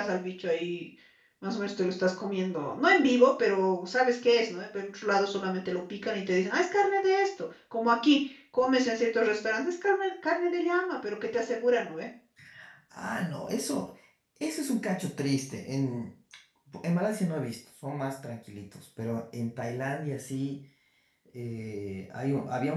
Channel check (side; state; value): both; identical; correlation 1.00